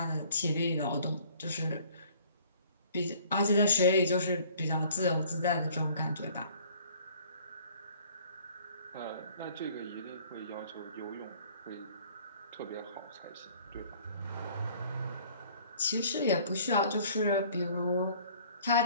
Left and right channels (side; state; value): both; inverted; correlation -0.54